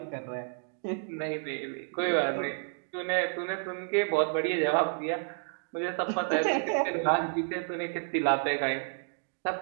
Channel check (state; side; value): silent; left; 57 dB below the other